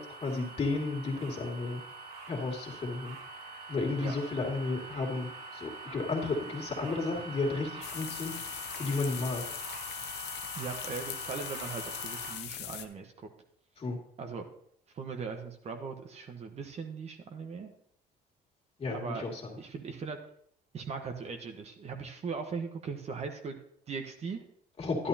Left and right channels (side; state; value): both; normal; correlation 0.55